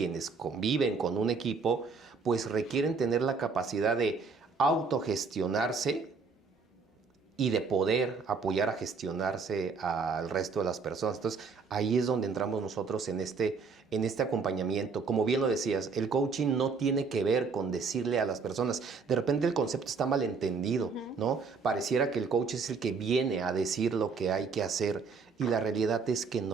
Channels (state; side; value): quieter; left; 4.8 dB